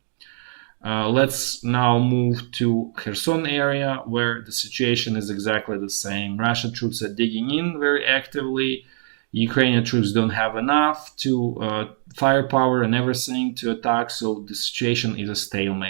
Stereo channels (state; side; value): silent; left; digital silence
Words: Let's now move to Kherson area, where the situation is exactly the same. Russian troops are digging in very actively. Ukrainian troops don't have enough to firepower and everything to attack, so the situation is a